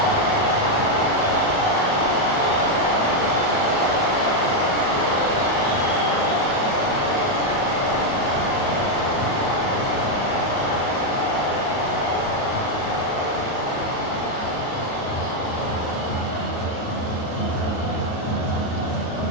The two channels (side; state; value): right; late; 38 ms